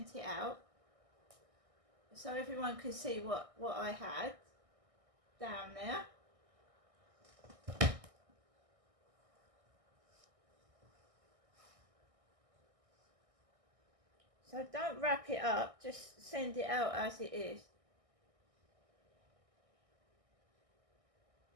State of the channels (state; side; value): late; left; 1.6 ms